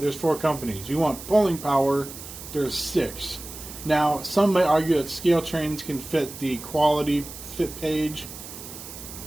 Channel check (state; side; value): noise; right; hiss, 13 dB below the sound